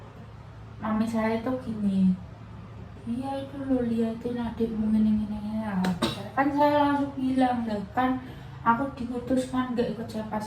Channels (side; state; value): both; identical; correlation 1.00